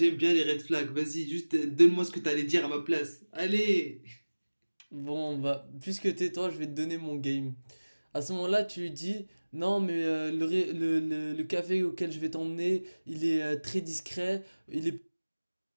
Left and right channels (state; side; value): inverted; both; correlation -1.00